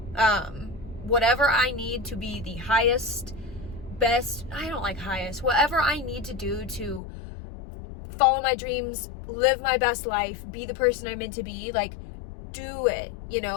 Whatever I need to be the highest, best, I don't like highest, whatever I need to do to follow my dreams, live my best life, be the person I'm meant to be, like, do it, you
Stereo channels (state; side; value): drops out; right; at 7.0 s